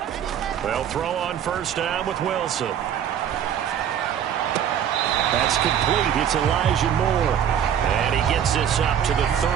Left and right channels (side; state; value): left; quieter; 9.2 dB